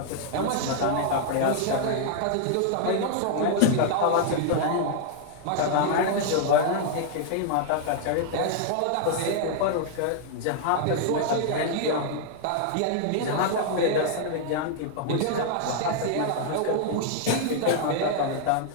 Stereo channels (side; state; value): both; different; correlation -0.01